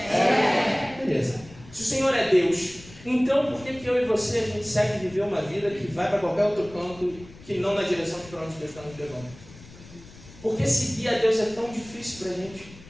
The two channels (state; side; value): noise; left; rumble, 20 dB below the sound